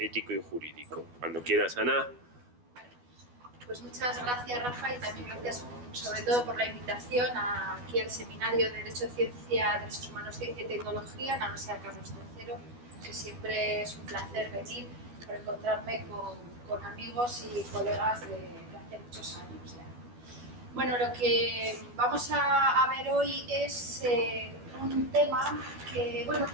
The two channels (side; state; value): left; late; 12 ms